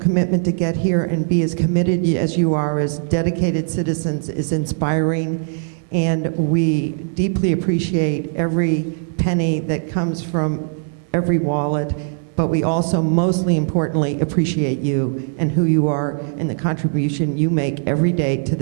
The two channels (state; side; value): silent; left; digital silence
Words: to get here and be as committed as you are as dedicated citizens is inspiring, and we deeply appreciate every penny that comes from every wallet, but we also mostly importantly appreciate you and who you are and the contribution you make every day to